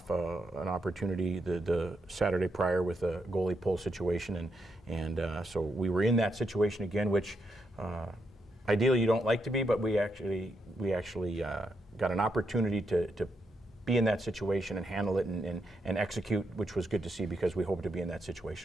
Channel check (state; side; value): normal; both; correlation 0.81